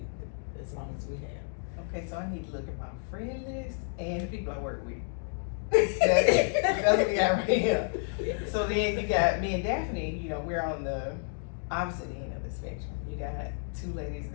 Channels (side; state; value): right; silent; 57 dB below the other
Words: as long as we have. Okay, so I need to look at my friend list and the people I work with. That's what we got right here. So then you got me and Daphne, you know, we're on the opposite end of the spectrum. You got two ladies